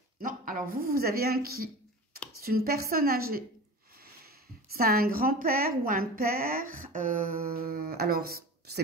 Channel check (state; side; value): normal; both; correlation 0.33